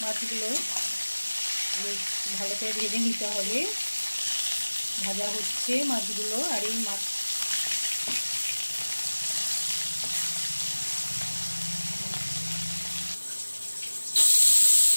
মাছগুলো ভালো করে ভেজে নিতে হবে। ভাজা হচ্ছে মাছগুলো। আর এই মাছ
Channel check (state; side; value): inverted; both; correlation -1.00